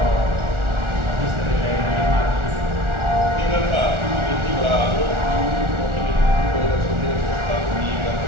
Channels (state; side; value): late; left; 1.4 ms